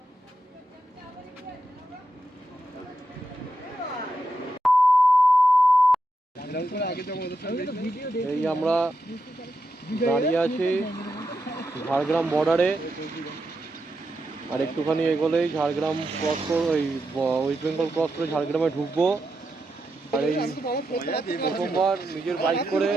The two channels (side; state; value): both; normal; correlation 0.86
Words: এই আমরা দাঁড়িয়ে আছি ঝাড়গ্রাম বর্ডারে। আর একটুখানি এগোলেই ঝাড়গ্রাম ক্রস করে, ওই ওয়েস্ট বেঙ্গল ক্রস করে ঝাড়গ্রামে ঢুকবো। আর এই প্রথমবার নিজের